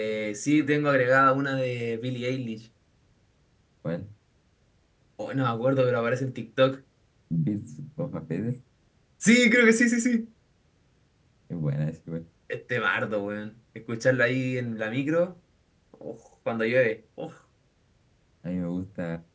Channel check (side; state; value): both; identical; correlation 1.00